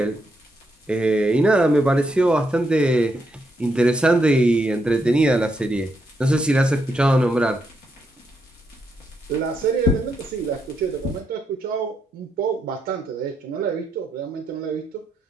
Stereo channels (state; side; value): normal; both; correlation 0.79